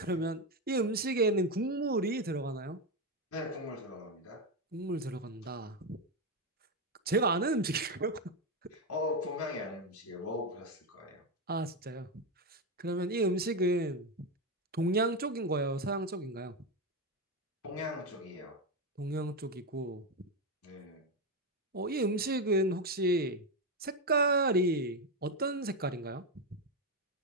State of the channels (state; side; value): normal; both; correlation 0.09